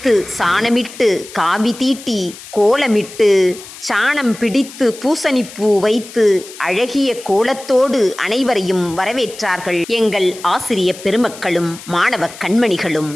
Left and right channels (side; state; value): left; noise; hiss, 16 dB below the sound